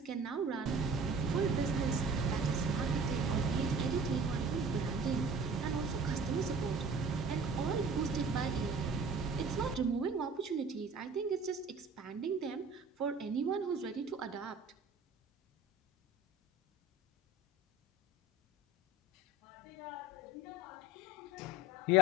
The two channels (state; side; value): normal; both; correlation 0.44